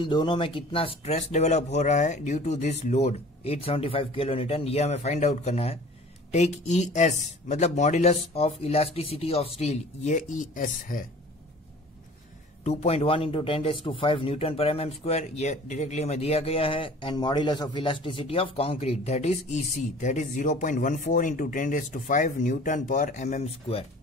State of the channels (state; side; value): normal; both; correlation 0.46